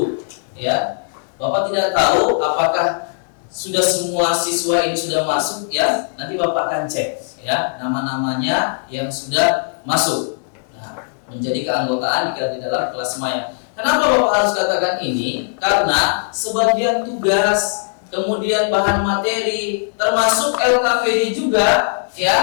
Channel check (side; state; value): right; silent; digital silence